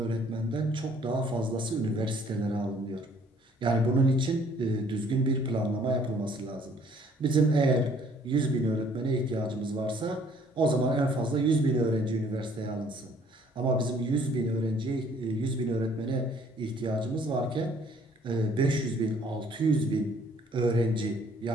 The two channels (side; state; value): both; normal; correlation 0.60